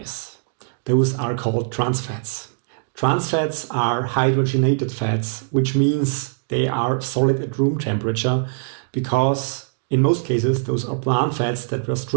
Those are called trans fats. Trans fats are hydrogenated fats, which means they are solid at room temperature, because in most cases those are plant fats that were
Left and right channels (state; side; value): silent; left; digital silence